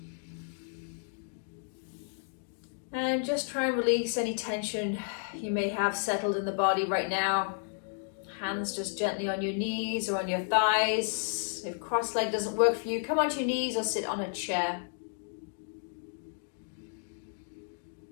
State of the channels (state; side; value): silent; right; digital silence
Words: And just try and release any tension you may have settled in the body right now. Hands just gently on your knees or on your thighs. If cross-leg doesn't work for you, come onto your knees or sit on a chair.